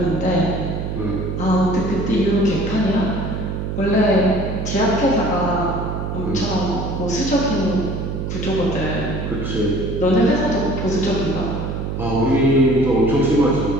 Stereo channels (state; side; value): noise; right; hum, 4 dB below the sound